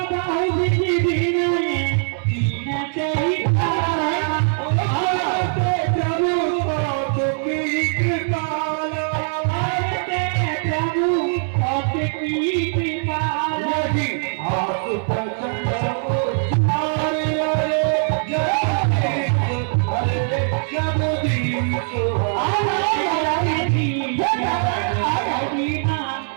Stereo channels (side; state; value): left; silent; 65 dB below the other